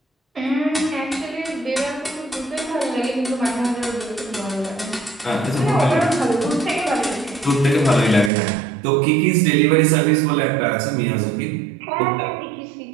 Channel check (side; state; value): left; drops out; at 8.3 s